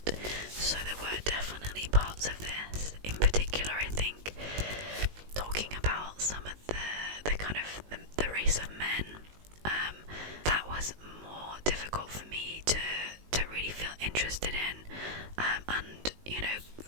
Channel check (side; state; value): left; late; 19 ms